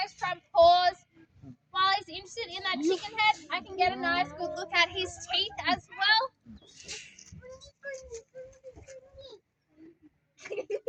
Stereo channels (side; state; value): both; identical; correlation 1.00